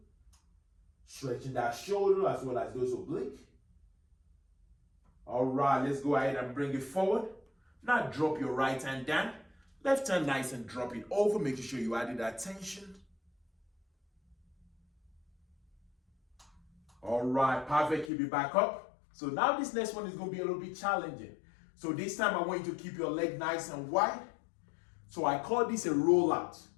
Stretching that shoulder as well as those obliques. All right, let's go ahead and bring it forward. Now drop your right hand down. Left hand nice and drop it over, making sure you added that tension. All right, perfect. Keep it back up. So now this next one is going to be a little bit challenging. So this time I want you to keep your leg nice and wide. So I call this a rollout.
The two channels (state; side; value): drops out; right; at 18.1 s